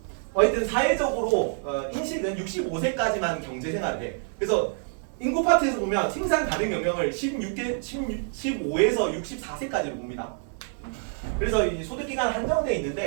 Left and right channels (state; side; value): silent; left; 60 dB below the other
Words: 하여튼 사회적으로 인식은 65세까지만 경제생활을 해. 그래서 인구 파트에서 보면 생산 가능 연령을 15에서 64세까지로 봅니다. 그래서 이 소득 기간 한정돼